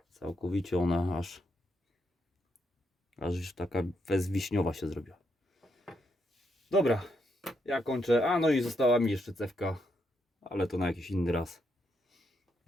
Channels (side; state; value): both; normal; correlation 0.79